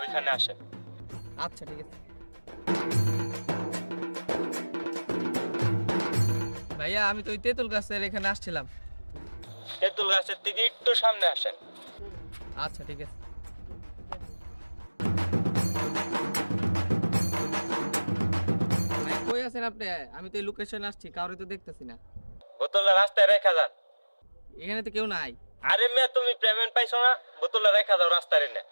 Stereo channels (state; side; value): inverted; both; correlation -1.00